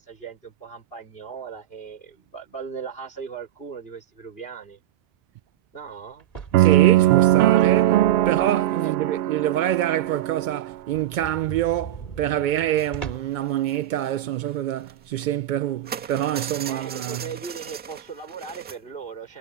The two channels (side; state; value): left; quieter; 12.9 dB